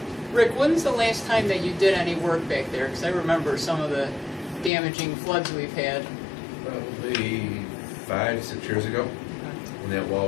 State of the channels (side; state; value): right; drops out; at 4.7 s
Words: Rick, when's the last time that you did any work back there? Because I remember some of the damaging floods we've had. Probably 5-6 years ago, when that